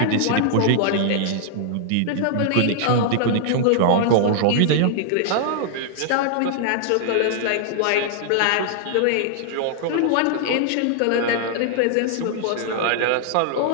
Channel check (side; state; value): both; different; correlation -0.01